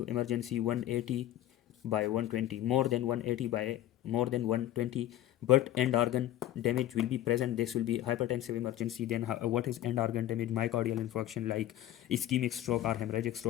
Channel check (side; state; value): right; quieter; 13.4 dB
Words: emergency 180 by 120, more than 180 by more than 120, but end organ damage will be present. This will be hypertensive emergency. Then what is end organ damage? Myocardial infarction like ischemic stroke or hemorrhagic